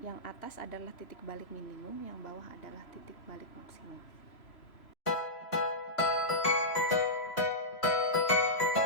yang atas adalah titik balik minimum, yang bawah adalah titik balik maksimum.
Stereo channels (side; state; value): right; late; 3.0 ms